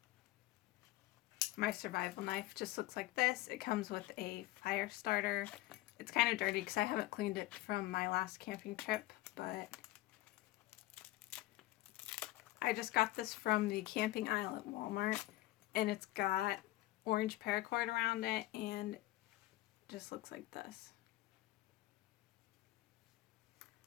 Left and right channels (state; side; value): quieter; right; 17.2 dB